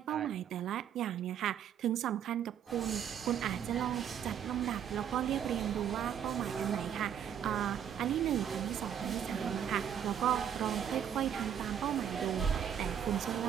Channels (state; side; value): quieter; left; 9.0 dB